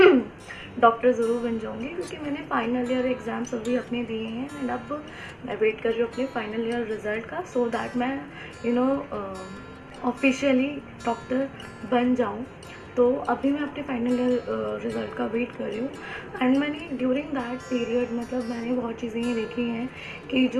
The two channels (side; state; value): both; identical; correlation 1.00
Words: डॉक्टर ज़रूर बन जाऊँगी, क्योंकि मैंने फाइनल ईयर एग्ज़ाम्स अभी अपने दिए हैं एंड अब मैं वेट कर रही हूँ अपने फाइनल ईयर रिज़ल्ट का, सो दैट मैं ऑफिशियली डॉक्टर बन जाऊँ। तो अभी मैं अपने फाइनल ईयर रिज़ल्ट का वेट कर रही हूँ एंड मैंने ड्यूरिंग दैट पीरियड मतलब मैंने बहुत चीज़ें ये देखी हैं कि